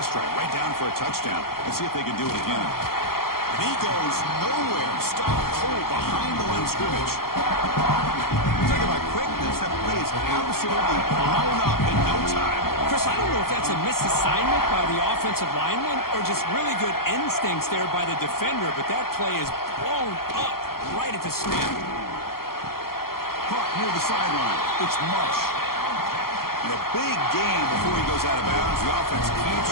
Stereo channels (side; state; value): right; late; 0.93 ms